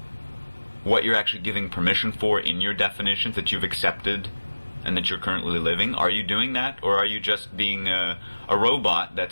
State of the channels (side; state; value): both; inverted; correlation -1.00